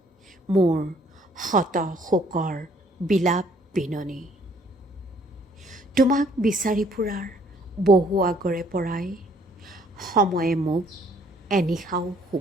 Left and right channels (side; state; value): both; normal; correlation 0.62